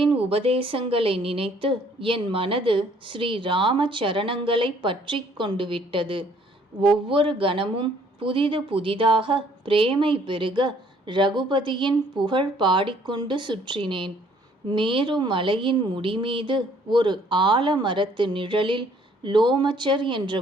உபதேசங்களை நினைத்து என் மனது ஸ்ரீ ராம சரணங்களை பற்றி கொண்டு விட்டது. ஒவ்வொரு கணமும் புதிது புதிதாக பிரேமை பெருக ரகுபதியின் புகழ் பாடிக்கொண்டு சுற்றினேன். மேரு மலையின் முடிமீது ஒரு ஆலமரத்து நிழலில் லோமச்சர் என்ற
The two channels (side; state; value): both; normal; correlation 0.61